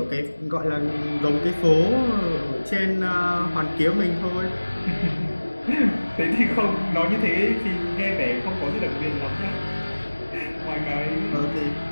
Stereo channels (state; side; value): inverted; both; correlation -1.00